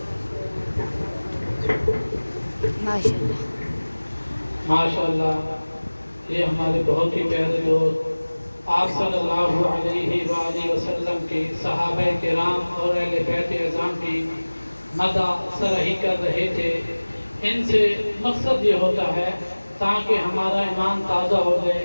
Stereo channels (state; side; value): inverted; both; correlation -1.00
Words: ماشاء اللہ. ماشاءاللہ. یہ ہمارے بہت ہی پیارے دوست آپ صلی اللہ علیہ وآلہ وسلم کے صحابہ کرام اور اہل بیت اعظام کی مدح سرہی کر رہے تھے. ان سے مقصد یہ ہوتا ہے تاکہ ہمارا ایمان تازہ ہو جائے.